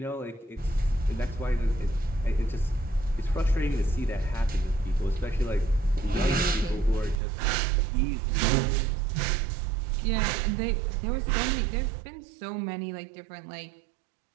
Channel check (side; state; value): left; drops out; at 7.2 s